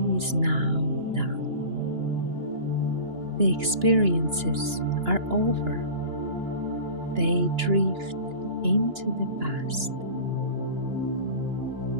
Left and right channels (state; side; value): late; left; 2.9 ms